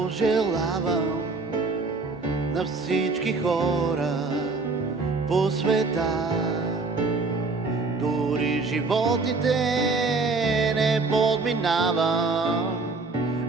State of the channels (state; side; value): quieter; left; 3.9 dB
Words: на всички хора по света. Дори животите не подминавам,